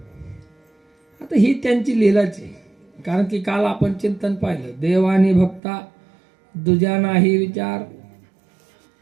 आता ही त्यांची लीलाच आहे. कारण की काल आपण चिंतन पाहिलं, देवानी भक्ता दुजा नाही विचार,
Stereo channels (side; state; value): left; drops out; at 5.6 s